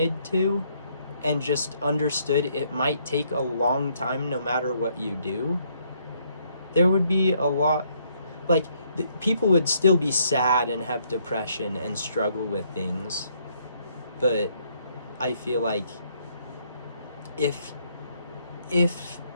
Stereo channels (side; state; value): both; inverted; correlation -0.70